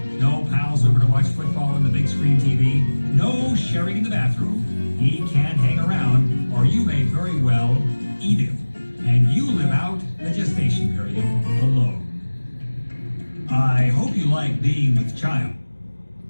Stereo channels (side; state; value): both; inverted; correlation -1.00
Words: no pals over to watch football on the big screen TV, no sharing in the bathroom. He can't hang around, or you may very well eat him. And you live out the gestation period alone. I hope you like being with child.